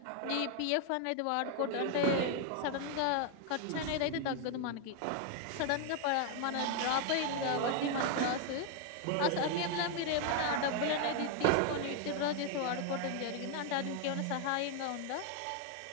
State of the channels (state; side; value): different; both; correlation 0.00